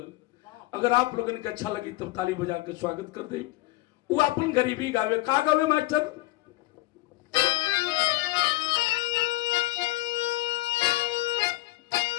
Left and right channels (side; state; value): right; quieter; 19.6 dB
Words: अगर आप लोगों ने अच्छा लगी तब ताली बजा के स्वागत कर दे वो अपन गरीबी गावे का गावे मास्टर